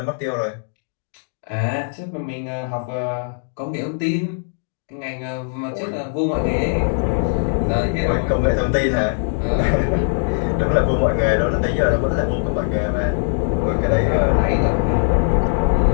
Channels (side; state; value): right; silent; digital silence